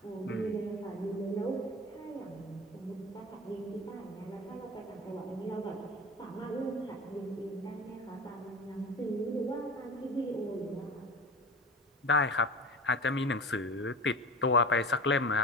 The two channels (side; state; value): both; normal; correlation 0.32